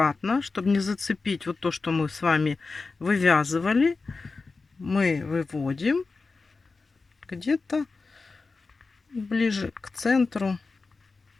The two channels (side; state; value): right; quieter; 4.1 dB